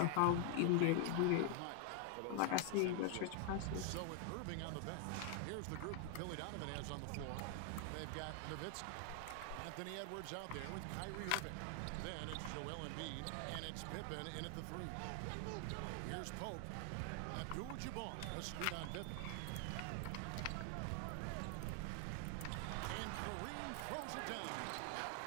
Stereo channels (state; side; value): different; both; correlation 0.00